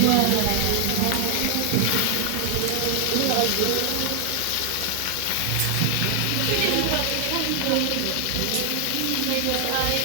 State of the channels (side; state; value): both; different; correlation 0.00